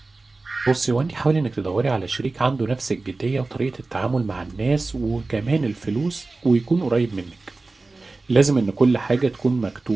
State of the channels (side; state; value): left; quieter; 3.5 dB